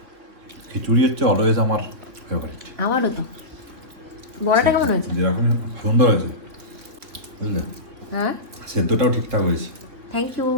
খিচুড়ি হচ্ছে অলওয়েজ আমার ফেভারিট। আমারও তো। বড়াটা কেমন হয়েছে? যেরকম সুন্দর হয়েছে, বুঝলে? হ্যাঁ, সেদ্ধটাও ঠিকঠাক হয়েছে। Thank you.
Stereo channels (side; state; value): left; late; 3.4 ms